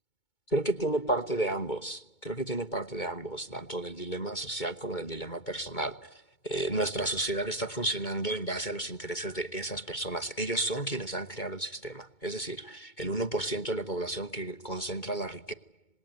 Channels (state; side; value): late; right; 2.2 ms